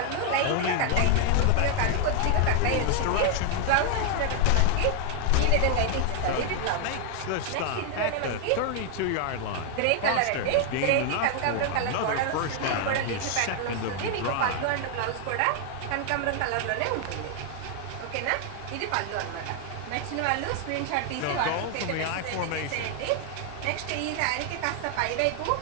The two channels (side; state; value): both; different; correlation 0.00